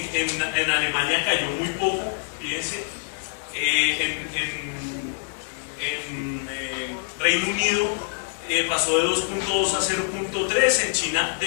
Alemania cayó muy poco, fíjense. En Reino Unido pasó de 2.2 a 0.3, en China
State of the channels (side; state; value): right; silent; 62 dB below the other